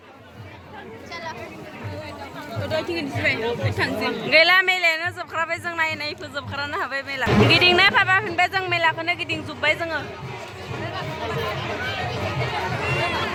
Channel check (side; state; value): both; identical; correlation 1.00